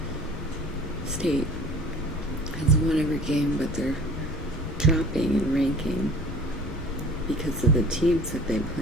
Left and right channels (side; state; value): both; normal; correlation 0.45